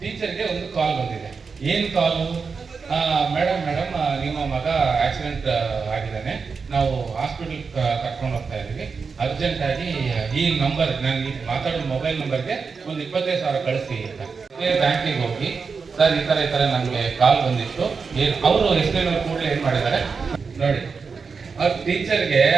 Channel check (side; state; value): left; quieter; 5.2 dB